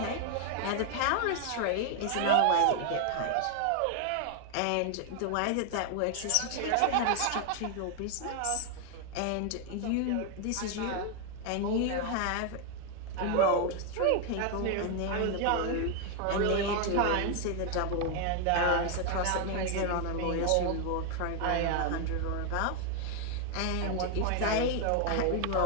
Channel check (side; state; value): both; different; correlation 0.00